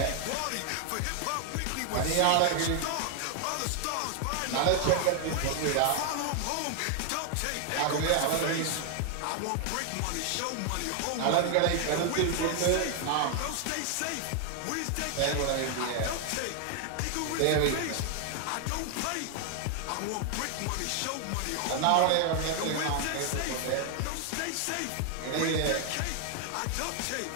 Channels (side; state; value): both; different; correlation 0.00